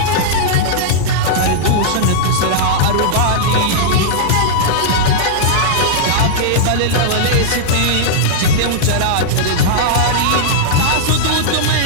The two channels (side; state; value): both; different; correlation -0.02